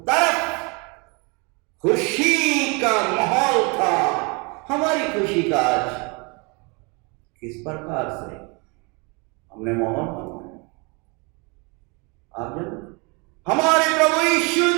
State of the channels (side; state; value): left; quieter; 30.4 dB